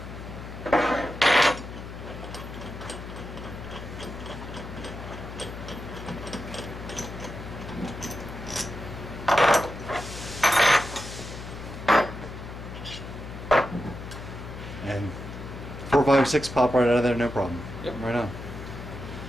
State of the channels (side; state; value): left; noise; hum, 10 dB below the sound